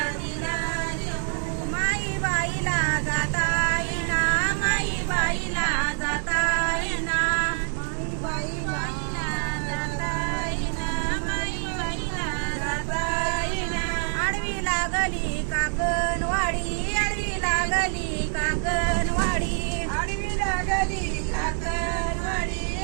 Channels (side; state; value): left; silent; 57 dB below the other